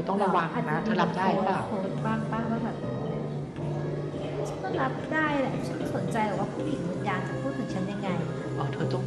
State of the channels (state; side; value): identical; both; correlation 1.00